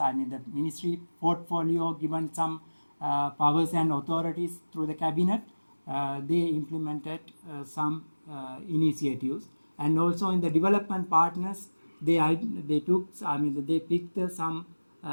ministry portfolio given some powers and authorities through the cabinet. They implemented some initiatives, and also in the development partners, they took. They picked some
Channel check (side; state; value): both; inverted; correlation -1.00